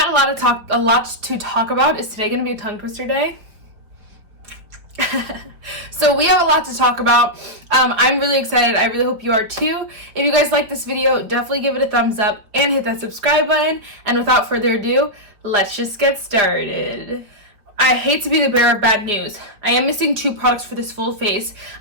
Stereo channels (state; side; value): late; left; 4.6 ms